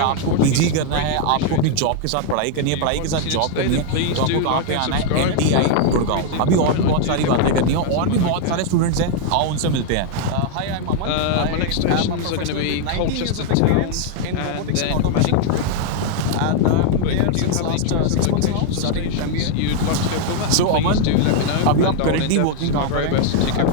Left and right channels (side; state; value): both; different; correlation 0.00